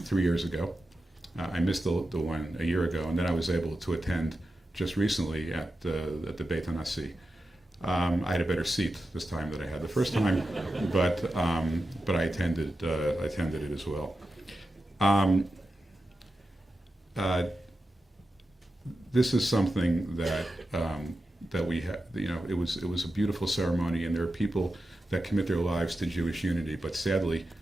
3 years ago. I missed the one a year ago, and then I was able to attend just recently at the Beit HaNasi. I had a better seat this time than I had the first time, but I attended it as well. This is something that we have. You know, it was a beautiful ceremony, and there are people that commit their lives to Jewish unity, but sadly,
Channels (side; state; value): both; normal; correlation 0.91